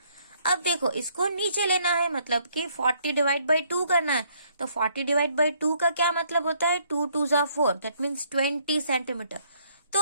अब देखो, इसको नीचे लेना है, मतलब कि 40 डिवाइड बाई 2 करना है, तो 40 डिवाइड बाई 2 का क्या मतलब होता है, 2 2 जा 4, दैट मीन्स 20 सेंटीमीटर। तो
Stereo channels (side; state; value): both; inverted; correlation -0.67